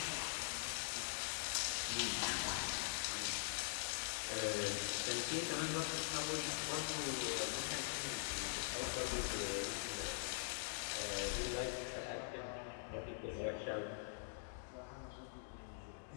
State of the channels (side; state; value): right; silent; digital silence